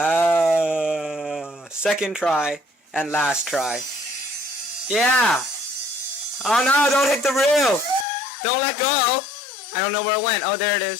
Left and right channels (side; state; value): right; drops out; at 8.1 s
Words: second try and last try. Yeah. Oh no, don't hit the roof. Don't let go. I don't know where it went. Oh, there it